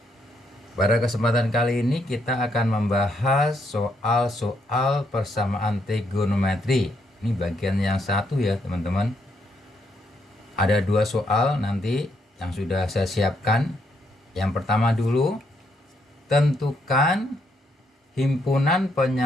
Pada kesempatan kali ini kita akan membahas soal-soal persamaan trigonometri. Ini bagian yang satu ya teman-teman. Ada dua soal nanti yang sudah saya siapkan. Yang pertama dulu, tentukan himpunan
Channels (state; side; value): normal; both; correlation 0.75